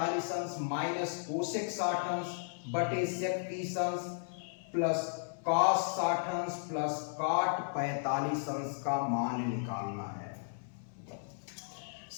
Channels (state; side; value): silent; right; 55 dB below the other